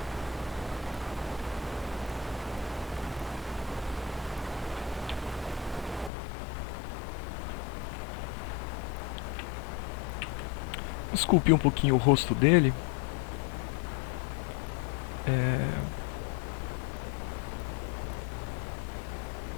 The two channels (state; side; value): drops out; right; at 6.1 s